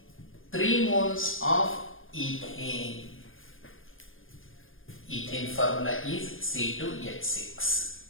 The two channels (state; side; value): late; right; 0.59 ms